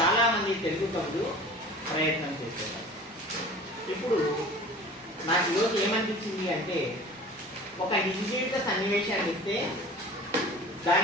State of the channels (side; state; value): both; normal; correlation 0.41